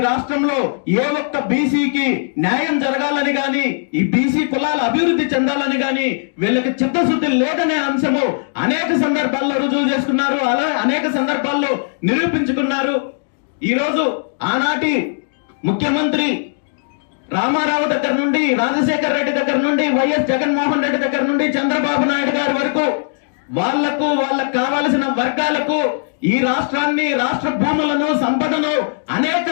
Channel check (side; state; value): right; silent; digital silence